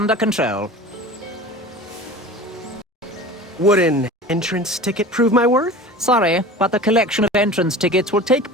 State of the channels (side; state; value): both; normal; correlation 0.37